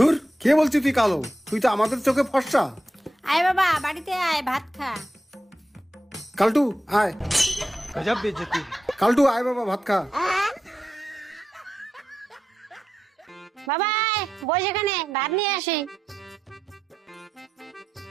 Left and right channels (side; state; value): both; normal; correlation 0.88